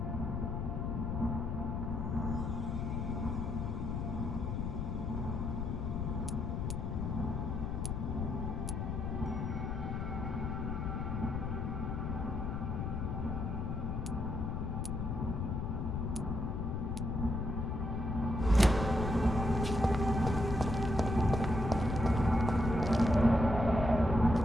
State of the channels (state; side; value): noise; left; rumble, 2 dB below the sound